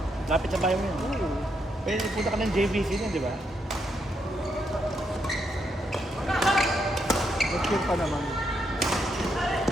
Lapit sa bahay mo yun. Pwede punta ka ng JVC na, di ba? Nag-cheer pa naman.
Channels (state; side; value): normal; both; correlation 0.79